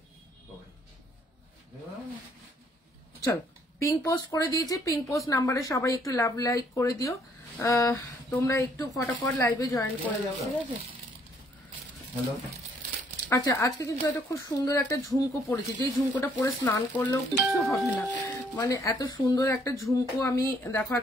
চলো পিঙ্ক পোস্ট করে দিয়েছি। পিঙ্ক পোস্ট নাম্বারে সবাই একটু লাভ লাইক করে দিও। তোমরা একটু ফটাফট লাইভে জয়েন করে যাও। ঠিক আছে, আচ্ছা আজকে কিন্তু একটা খুব সুন্দর একটা ঝুমকো পরেছি, যেই ঝুমকোটা পরে স্নান করলেও কিছু হবে না, মানে এত সুন্দর একটা ঝুমকো আমি দেখো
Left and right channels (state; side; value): normal; both; correlation 0.65